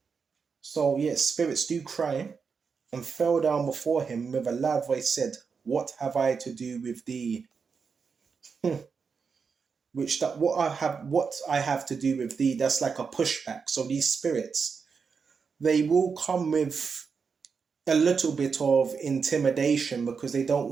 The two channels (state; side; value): quieter; left; 5.6 dB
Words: So yes, spirits do cry, and fell down before him with a loud voice, said, "What have I to do with thee?" What I have to do with thee, that's like a pushback. So these spirits, they will come with a little bit of intimidation because they don't